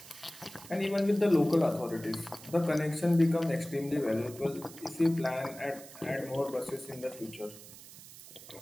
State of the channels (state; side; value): noise; right; hiss, 17 dB below the sound